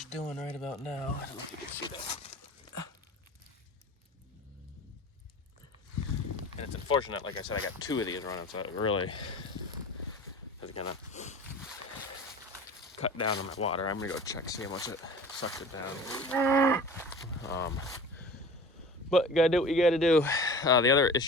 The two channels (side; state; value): both; normal; correlation 0.39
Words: doing right about now. I don't know if you can see that. And it's unfortunate, like I said, I got 2 of these running, so it really is gonna cut down on my water. I'm gonna go check, see how much it sucked it down. But you gotta do what you gotta do. The other